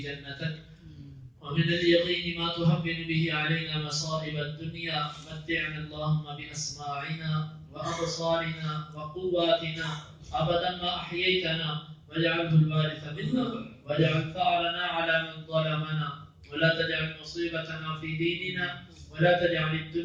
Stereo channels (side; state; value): both; identical; correlation 1.00